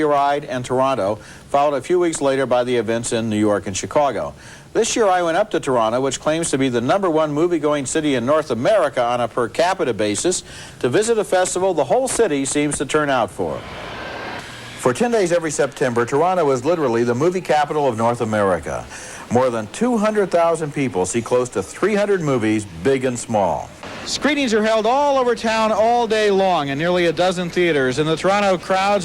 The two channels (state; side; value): identical; both; correlation 1.00